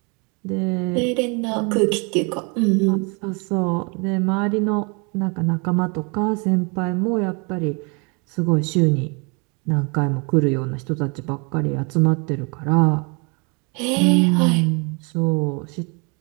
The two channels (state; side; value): quieter; left; 32.4 dB